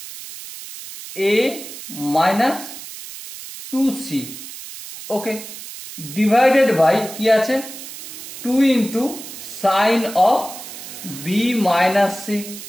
A minus 2c, okay, divided by কি আছে 2 into sine of B minus C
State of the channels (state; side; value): noise; right; hiss, 12 dB below the sound